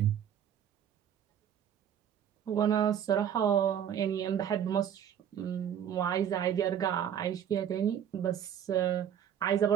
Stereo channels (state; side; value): quieter; left; 9.2 dB